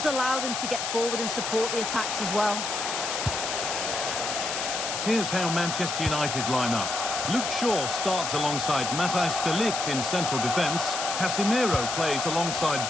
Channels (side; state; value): left; noise; hiss, 3 dB below the sound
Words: allow them to get forward and support the attacks as well. Here's how Manchester United line up. Luke Shaw starts alongside Matthijs de Ligt in central defence. Casemiro plays alongside